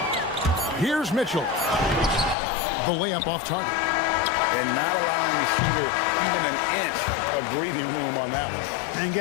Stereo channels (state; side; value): drops out; right; at 2.4 s